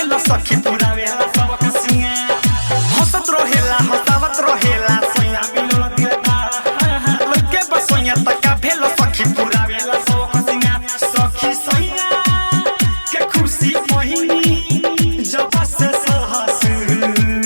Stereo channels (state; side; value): inverted; both; correlation -1.00